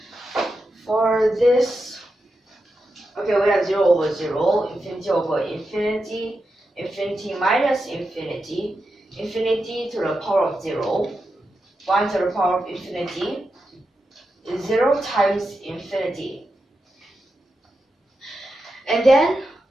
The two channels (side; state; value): both; normal; correlation 0.88